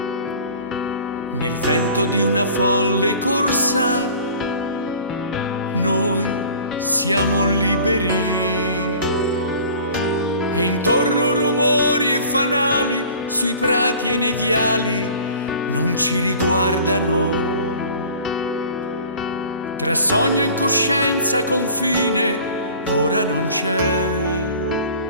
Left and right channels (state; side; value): inverted; both; correlation -0.45